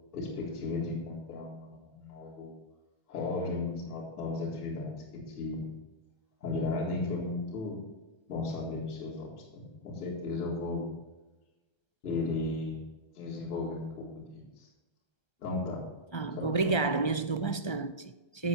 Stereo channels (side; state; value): right; late; 1.3 ms